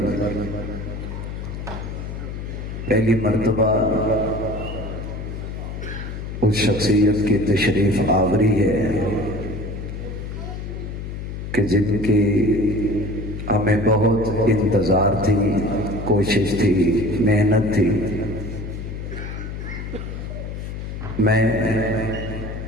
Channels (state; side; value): noise; left; hum, 7 dB below the sound